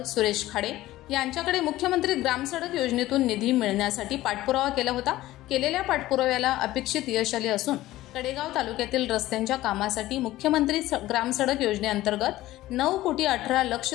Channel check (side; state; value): right; quieter; 16.1 dB